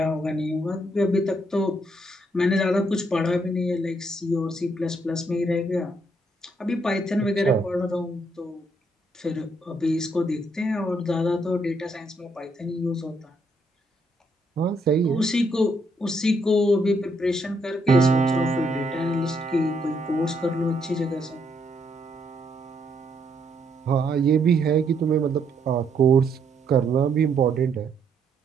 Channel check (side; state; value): both; normal; correlation 0.73